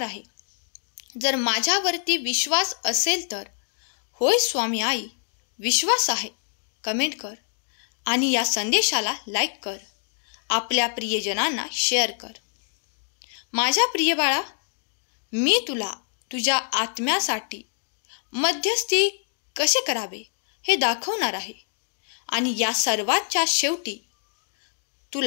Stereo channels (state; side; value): silent; right; digital silence